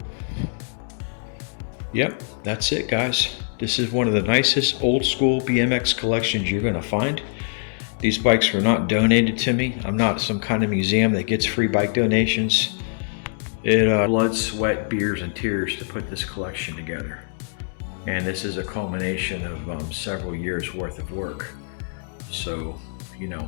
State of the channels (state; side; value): silent; right; 63 dB below the other